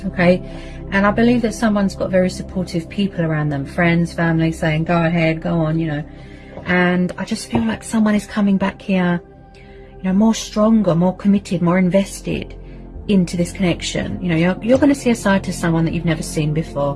Okay? And I believe that someone's got very supportive people around them, friends, family, saying, go ahead, go on, you know. And I just feel like someone is coming back here, you know, more stronger, more committed, more invested into this connection. You know, you're going to see a side to someone that you've never seen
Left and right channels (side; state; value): both; identical; correlation 1.00